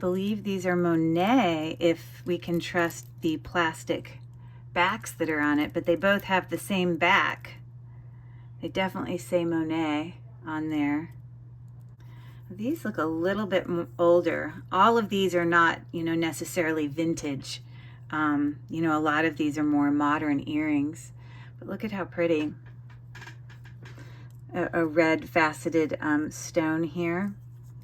these are Monet, if we can trust the plastic backs that are on it, but they both have the same back. They definitely say Monet on there. These look a little bit older. All of these are not, you know, necessarily vintage. You know, a lot of these are more modern earrings, but look at how pretty. A red faceted stone here.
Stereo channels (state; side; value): identical; both; correlation 1.00